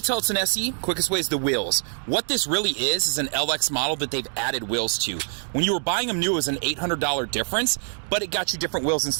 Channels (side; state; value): left; silent; digital silence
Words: tell it's an SE, quickest way is the wheels. What this really is an LX model that they've added wheels to. When you were buying them new, it was an $800 difference, but it got you different wheels